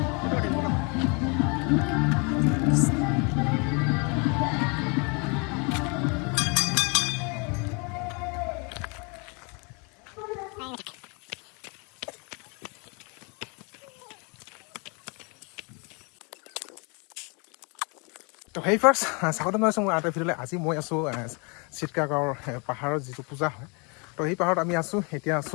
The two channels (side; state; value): right; quieter; 32.7 dB